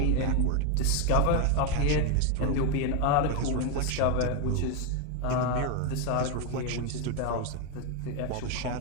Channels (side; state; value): both; different; correlation 0.01